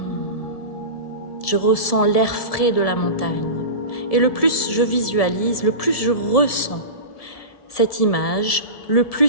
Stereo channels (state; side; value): late; right; 1.7 ms